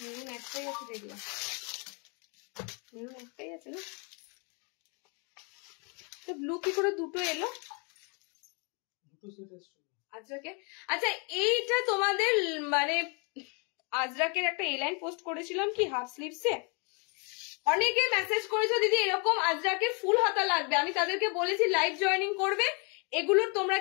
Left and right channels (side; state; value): right; quieter; 34.5 dB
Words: একটাই আছে, দেখলাম মেরুন একটাই আছে না, ব্লু কি করে দুটো এলো? আজরাকে, আচ্ছা এইটা তোমাদের মানে আজরাকের একটা এলাইন পোস্ট করেছিলাম কি হাফ স্লিভসে, অনেকে মেসেজ করেছো দিদি এরকম আজরাকের ফুল হাতা লাগবে, আমি তাদেরকে বলেছি লাইভ জয়েনিং করবে, এগুলোর তোমরা